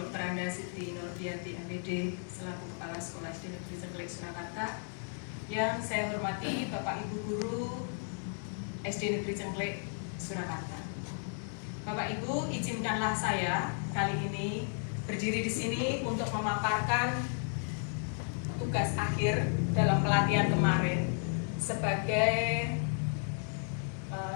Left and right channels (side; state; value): right; silent; 55 dB below the other